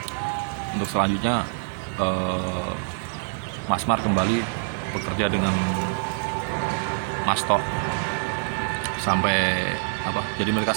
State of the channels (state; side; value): silent; left; digital silence